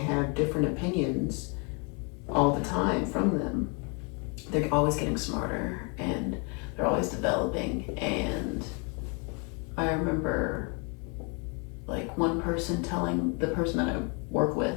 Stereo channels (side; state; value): right; quieter; 34.3 dB